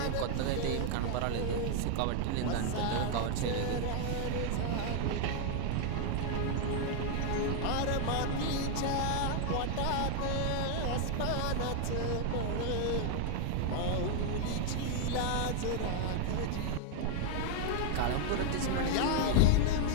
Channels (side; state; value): both; different; correlation 0.00